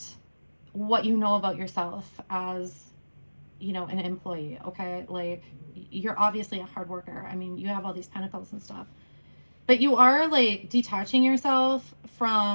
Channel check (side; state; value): both; inverted; correlation -1.00